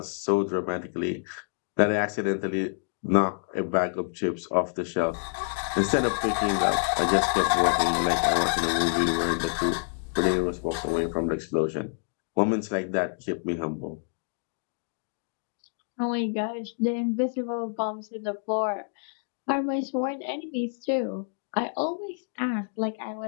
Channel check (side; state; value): right; silent; digital silence